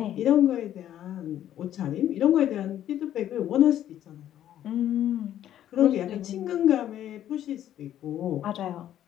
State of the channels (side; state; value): right; quieter; 11.5 dB